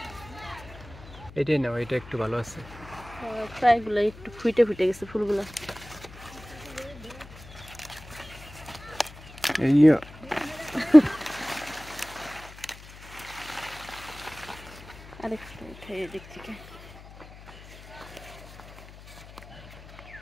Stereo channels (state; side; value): noise; left; hum, 18 dB below the sound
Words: এটাই নাও, এটা একটু ভালো আছে। প্রায়গুলো একটু ফুটে গেছে ফুলগুলো। আরেকটা খাইয়ে দেখছি কে।